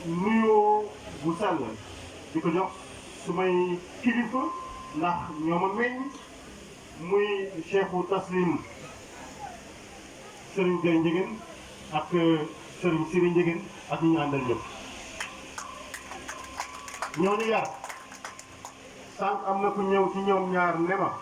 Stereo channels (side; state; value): both; identical; correlation 1.00